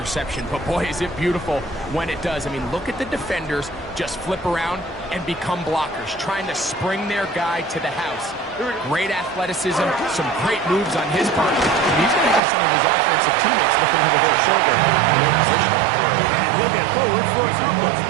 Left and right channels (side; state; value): left; drops out; at 12.4 s